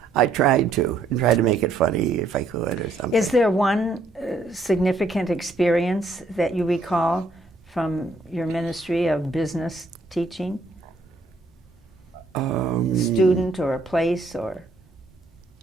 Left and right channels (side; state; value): left; quieter; 3.2 dB